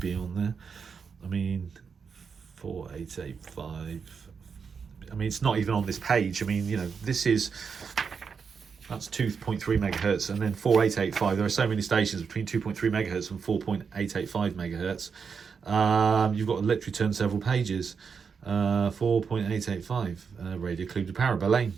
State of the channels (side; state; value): left; quieter; 5.9 dB